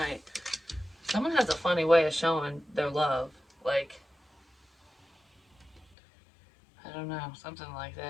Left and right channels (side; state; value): right; drops out; at 6.0 s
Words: Someone has a funny way of showing their love. Like, I don't know, something like